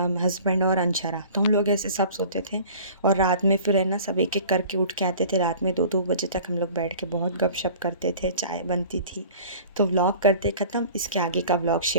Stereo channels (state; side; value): inverted; both; correlation -0.45